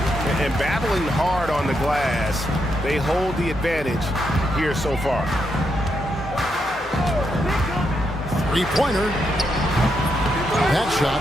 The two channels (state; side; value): normal; both; correlation 0.81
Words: And battling hard on the glass, they hold the advantage here so far. Three-pointer. That